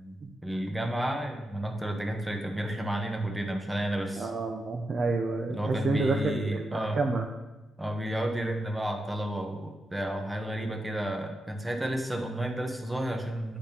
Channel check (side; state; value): both; normal; correlation 0.87